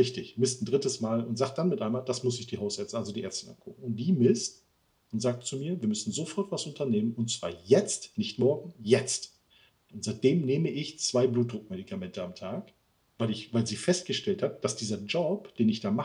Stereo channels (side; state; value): both; identical; correlation 1.00